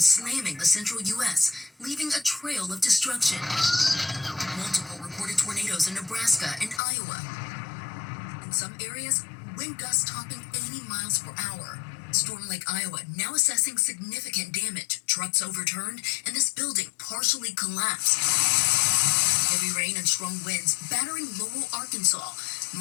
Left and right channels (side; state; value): right; drops out; at 6.8 s